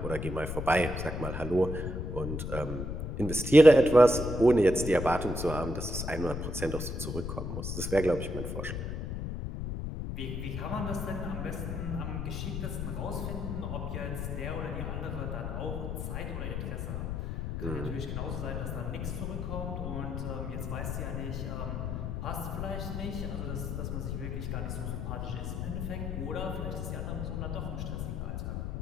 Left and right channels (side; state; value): left; noise; rumble, 3 dB below the sound